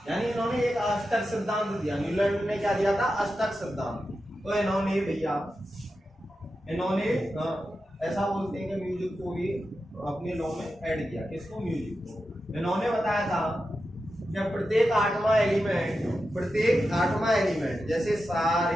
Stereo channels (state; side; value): normal; both; correlation 0.90